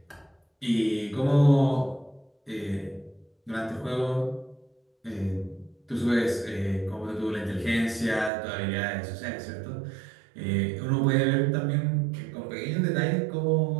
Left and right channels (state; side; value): drops out; left; at 8.3 s